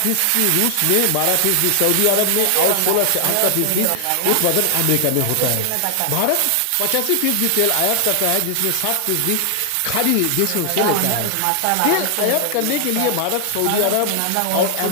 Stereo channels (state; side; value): different; both; correlation 0.00